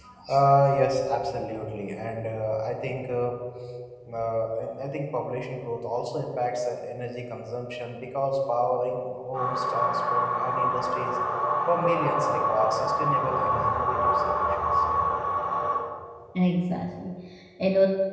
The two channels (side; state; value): both; identical; correlation 1.00